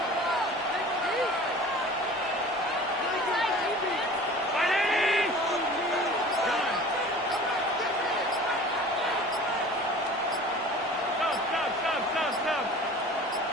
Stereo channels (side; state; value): both; normal; correlation 0.42